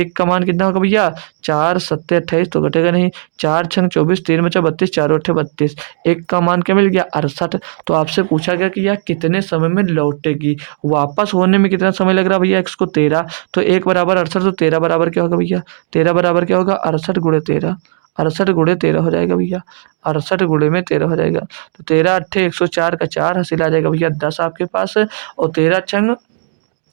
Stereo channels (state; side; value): silent; left; digital silence